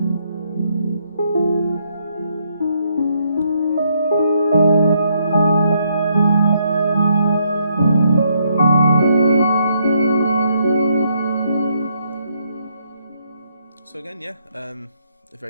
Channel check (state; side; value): inverted; both; correlation -0.74